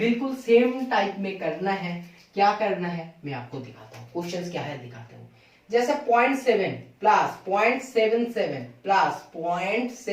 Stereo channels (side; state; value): both; identical; correlation 1.00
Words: सेम टाइप में करना है। क्या करना है मैं आपको दिखाता हूँ, क्वेश्चंस क्या है दिखाता हूँ। जैसे 0.7 प्लस 0.77 प्लस